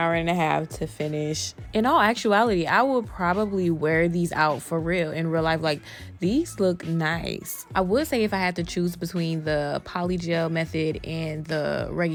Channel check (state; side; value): identical; both; correlation 1.00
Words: a half to finish. In all actuality, I will probably wear these out for real in real life. Like, these look nice. I would say if I had to choose between the polygel method and the